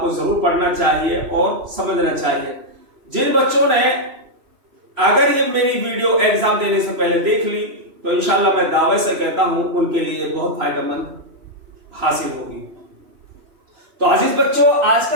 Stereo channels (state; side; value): late; left; 3.0 ms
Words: کو ضرور پڑھنا چاہیے اور سمجھنا چاہیے۔ جن بچوں نے اگر یہ میری ویڈیو ایگزام دینے سے پہلے دیکھ لی تو انشاءاللہ میں دعوے سے کہتا ہوں ان کے لیے بہت فائدہ مند حاصل ہوگی۔ تو عزیز بچوں، آج